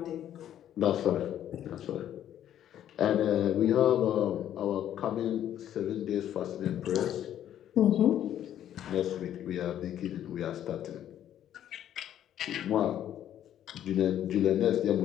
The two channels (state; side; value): quieter; right; 11.0 dB